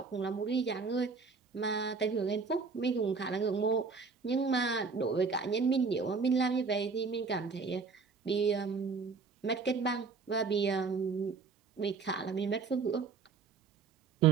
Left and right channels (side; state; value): left; quieter; 4.9 dB